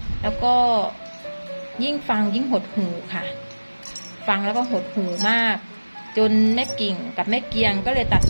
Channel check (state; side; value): inverted; both; correlation -1.00